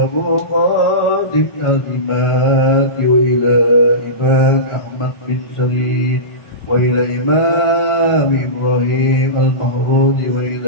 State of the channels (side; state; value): right; late; 1.4 ms